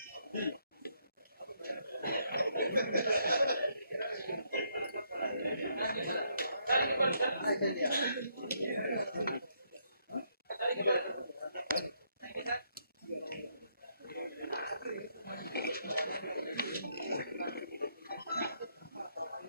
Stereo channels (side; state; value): both; inverted; correlation -0.74